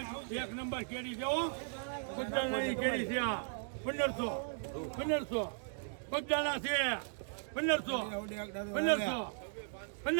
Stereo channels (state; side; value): silent; left; digital silence